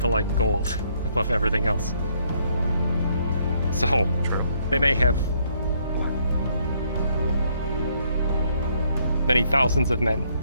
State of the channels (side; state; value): both; inverted; correlation -0.70